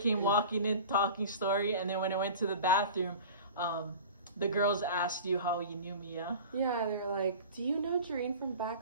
walking in, talking story, and then when I went to the bathroom, the girls asked you how you knew me, yeah? Yeah, they were like, do you know Jareen from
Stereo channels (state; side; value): inverted; both; correlation -0.38